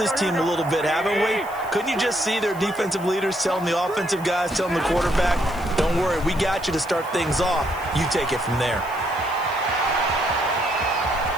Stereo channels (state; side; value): noise; left; hiss, 21 dB below the sound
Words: team a little bit, haven't we? Couldn't you just see their defensive leaders telling the offensive guys, telling the quarterback, don't worry, we got you to start things off. You take it from there.